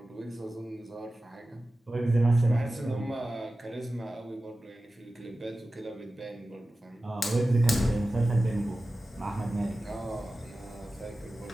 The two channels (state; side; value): normal; both; correlation 0.95